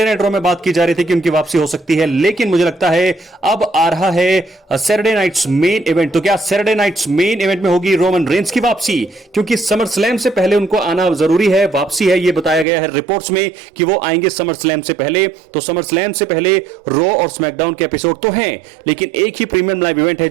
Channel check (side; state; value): left; drops out; at 12.7 s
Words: नाइट रॉ में बात की जा रही थी कि उनकी वापसी हो सकती है, लेकिन मुझे लगता है अब आ रहा है सैटरडे नाइट्स मेन इवेंट। तो क्या सैटरडे नाइट्स मेन इवेंट में होगी रोमन रेंस की वापसी? क्योंकि समर स्लैम से पहले उनको आना जरूरी है। वापसी है ये बताया गया है रिपोर्ट्स में कि वो आएंगे समर स्लैम से पहले। तो समर स्लैम से पहले रॉ और स्मैकडाउन के एपिसोड तो हैं, लेकिन एक ही प्रीमियम लाइव इवेंट है